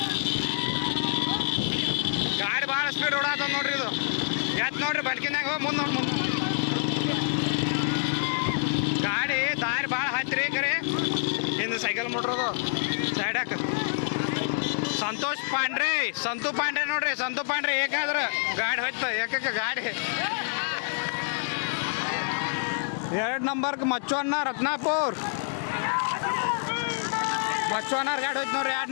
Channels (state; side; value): silent; right; 60 dB below the other